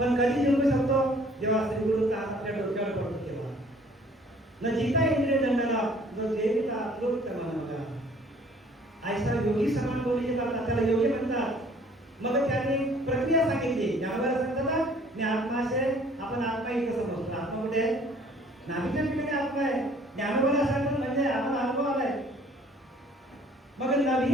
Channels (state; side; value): normal; both; correlation 0.56